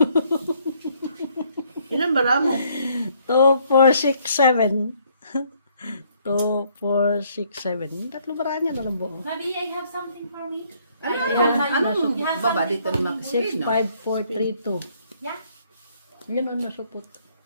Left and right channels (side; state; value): both; inverted; correlation -0.67